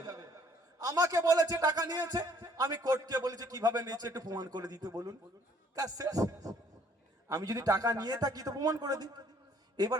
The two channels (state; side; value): normal; both; correlation 0.61